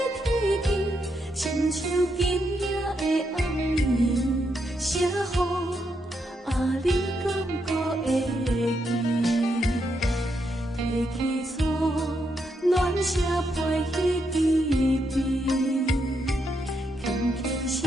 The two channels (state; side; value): normal; both; correlation 0.80